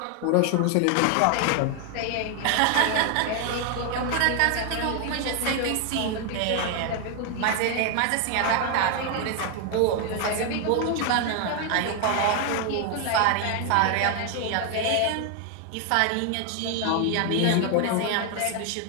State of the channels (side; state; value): both; different; correlation 0.00